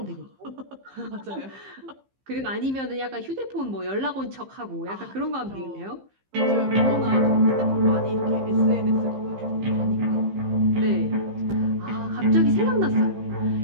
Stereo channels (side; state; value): left; late; 15 ms